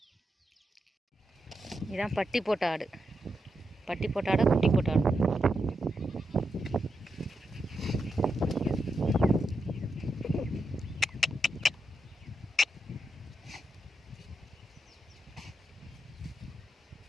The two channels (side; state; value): both; normal; correlation 0.85